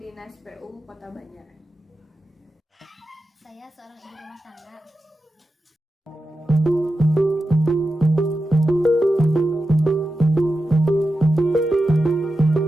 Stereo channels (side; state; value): both; normal; correlation 0.91